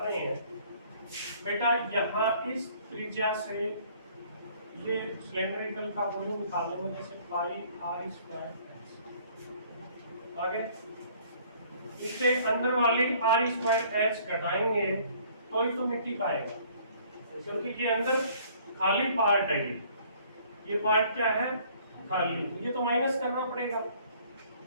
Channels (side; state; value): both; inverted; correlation -0.58